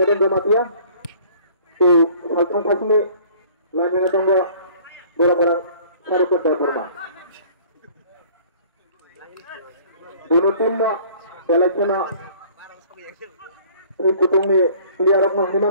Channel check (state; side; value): inverted; both; correlation -0.53